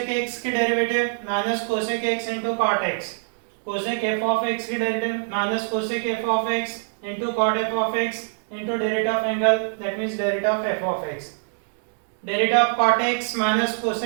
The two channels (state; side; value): silent; left; 62 dB below the other